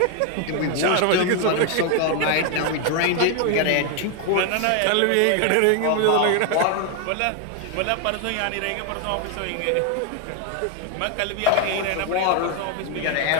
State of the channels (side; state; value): both; different; correlation 0.01